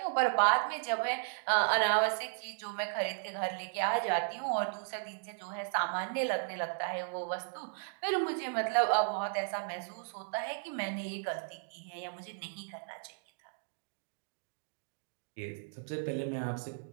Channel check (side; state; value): left; silent; digital silence